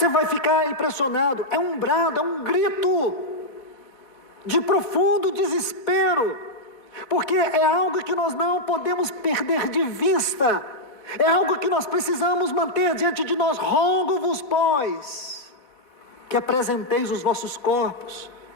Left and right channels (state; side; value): late; right; 4.1 ms